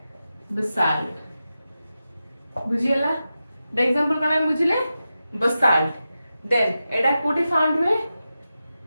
बसाल्ट बुझियला द एग्जांपल कोन हम बुझिले बसाल्ट देन एटा कोठी फाउंड हुए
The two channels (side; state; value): both; inverted; correlation -0.92